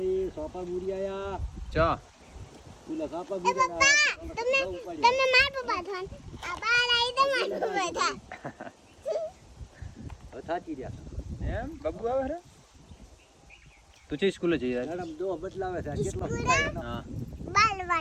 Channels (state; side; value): identical; both; correlation 1.00